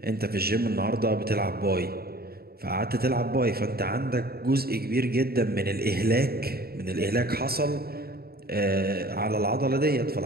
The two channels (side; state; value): left; late; 0.45 ms